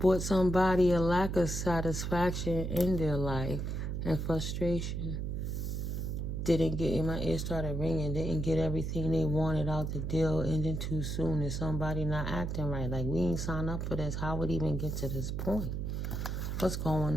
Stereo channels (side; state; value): right; noise; hum, 2 dB below the sound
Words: somebody a lack of satisfaction in their life and frustration. Didn't get, my ear started ringing, didn't get everything they wanted out the deal, ending too soon. Is somebody not acting right? Like, we ain't signed up for this. How would it even get to this point? What's